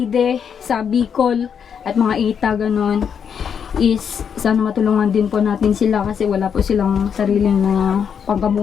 sa Bicol at mga Ita ganon, is sana matulungan din po natin sila kasi wala po silang sariling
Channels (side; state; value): right; quieter; 7.4 dB